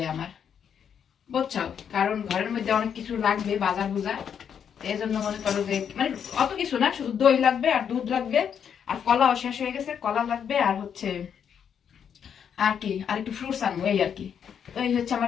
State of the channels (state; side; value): quieter; right; 8.0 dB